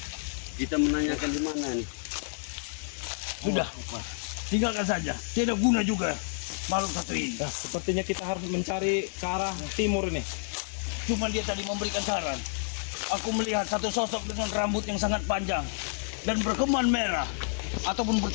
Kita menanyakan di mana nih? Sudah, tinggalkan saja. Tidak guna juga makhluk satu ini. Nah, sepertinya kita harus mencari ke arah timur ini. Cuma dia tadi memberikan saran. Aku melihat satu sosok dengan rambut yang sangat panjang dan berkeman merah ataupun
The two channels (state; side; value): silent; right; digital silence